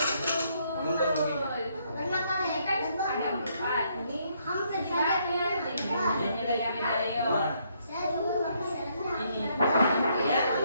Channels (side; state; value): both; inverted; correlation -0.72